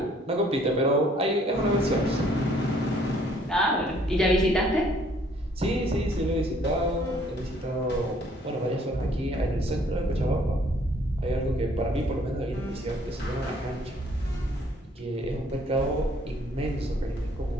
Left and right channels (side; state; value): both; normal; correlation 0.62